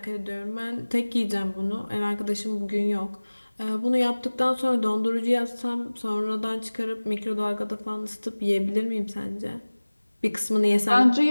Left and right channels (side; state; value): both; inverted; correlation -1.00